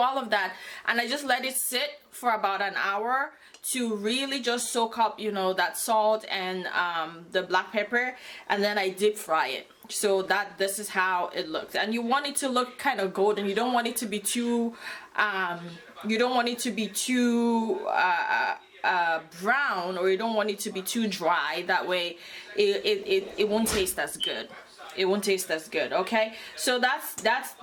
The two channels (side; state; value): both; identical; correlation 1.00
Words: of that, and I just let it sit for about an hour to really just soak up, you know, that salt and the black pepper, and then I deep fry it. So this is how it looks, and you want it to look kind of golden. You don't want it to be too brown, or you don't want it to be too dry. That way it won't taste as good. It won't taste as good, okay? So that's